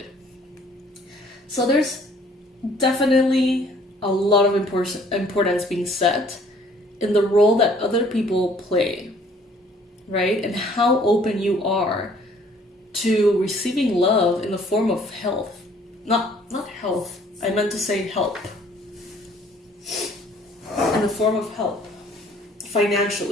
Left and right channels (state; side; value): normal; both; correlation 0.58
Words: So there's definitely a lot of importance being set in the role that other people play, right? And how open you are to receiving love in the form of health. Not health, I meant to say help. In the form of help,